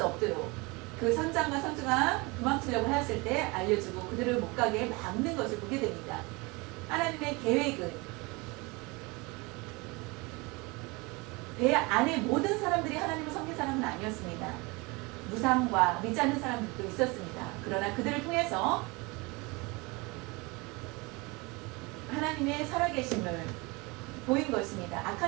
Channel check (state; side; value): quieter; left; 26.1 dB